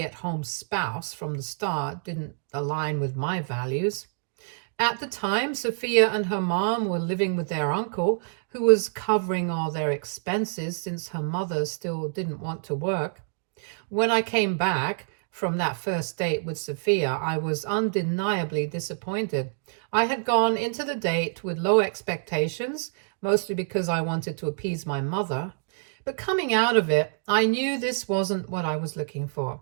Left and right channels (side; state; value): left; silent; digital silence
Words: spouse from the start didn't align with my values. At the time, Sophia and her mom were living with their uncle, who was covering all their expenses since her mother still didn't want to work. When I came back from that first date with Sophia, I was undeniably disappointed. I had gone into the date with low expectations, mostly because I wanted to appease my mother. But coming out of it, I knew this wasn't what I was looking for.